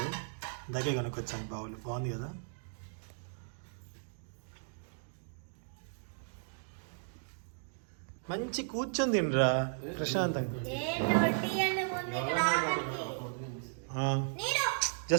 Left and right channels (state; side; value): silent; left; digital silence